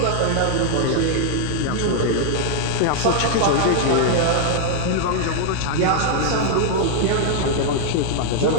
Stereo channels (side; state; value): both; different; correlation -0.01